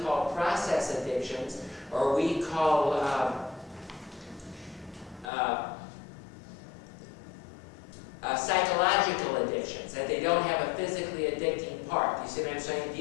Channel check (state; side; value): drops out; right; at 5.3 s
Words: call process addictions, or we call psychological addictions, that they don't have a physically addicting part. You see what I'm saying?